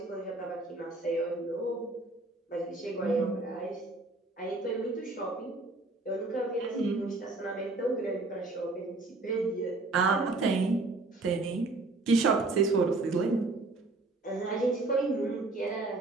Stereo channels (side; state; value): left; quieter; 3.2 dB